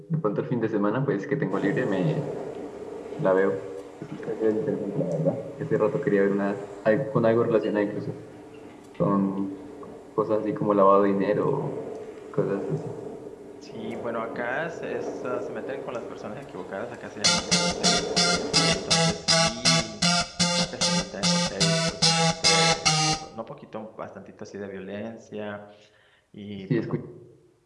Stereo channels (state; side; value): identical; both; correlation 1.00